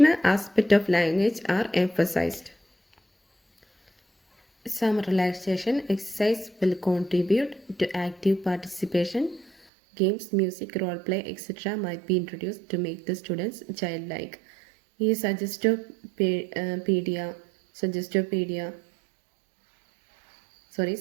aspect of language are emphasized. Some relaxation exercise will contribute to active participation. Games, music, role play, etc. might be introduced to make the students childlike. ഈ സജസ്റ്റോപീഡിയ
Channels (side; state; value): left; drops out; at 9.5 s